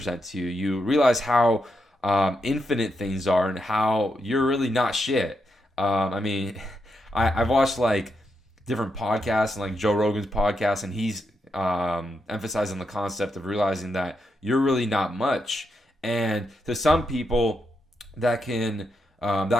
to you, you realize how infinite things are, and how you're really not shit. I mean, I've watched like different podcasts, and like Joe Rogan's podcast, and he's emphasizing the concept of realizing that you're really not much. And to some people, that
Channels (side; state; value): both; normal; correlation 0.83